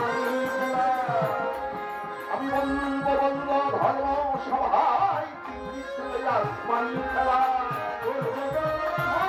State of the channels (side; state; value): both; identical; correlation 1.00